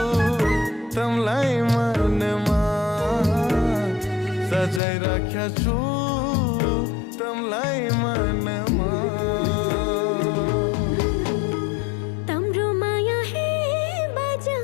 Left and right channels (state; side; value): drops out; right; at 4.8 s